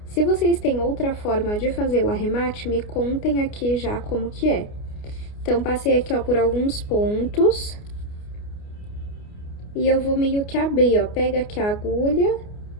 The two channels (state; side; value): late; right; 29 ms